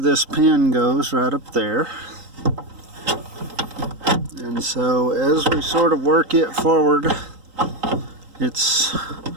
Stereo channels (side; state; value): left; late; 3.8 ms